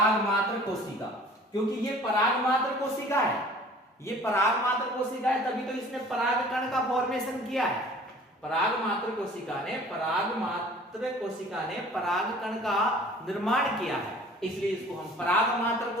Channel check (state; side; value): normal; both; correlation 0.48